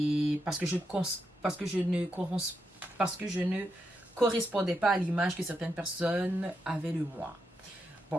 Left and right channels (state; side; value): normal; both; correlation 0.84